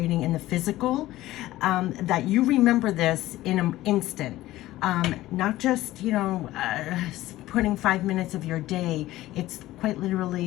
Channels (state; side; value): quieter; right; 16.1 dB